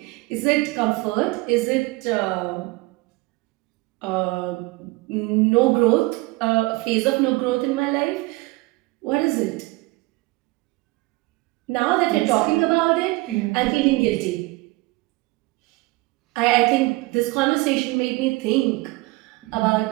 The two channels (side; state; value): left; quieter; 22.9 dB